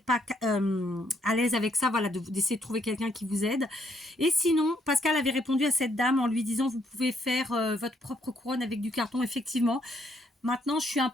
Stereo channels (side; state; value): both; normal; correlation 0.71